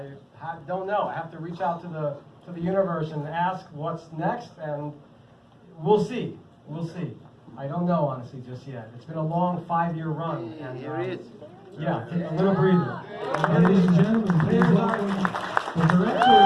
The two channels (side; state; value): both; identical; correlation 1.00